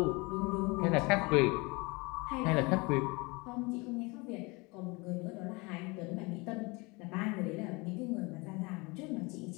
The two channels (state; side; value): quieter; right; 26.6 dB